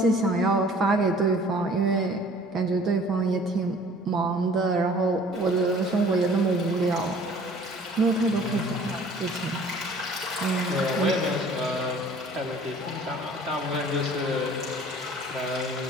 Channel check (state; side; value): normal; both; correlation 0.51